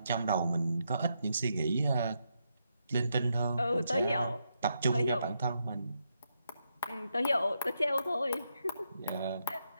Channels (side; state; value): both; inverted; correlation -0.82